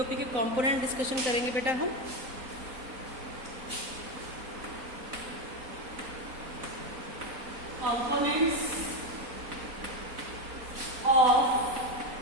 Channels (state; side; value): late; left; 3.9 ms